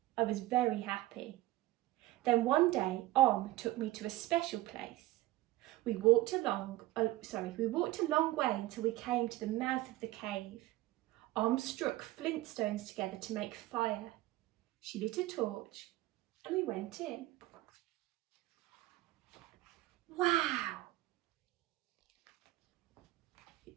I was very happy. Then one day, took me to a special place. We walked a long way until we came to the mouth of the cave. Struck flint stones together to make fire. She lit a torch and we went in. Wow!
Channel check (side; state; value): left; quieter; 17.3 dB